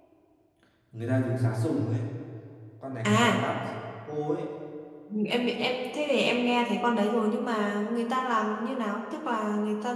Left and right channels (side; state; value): both; identical; correlation 1.00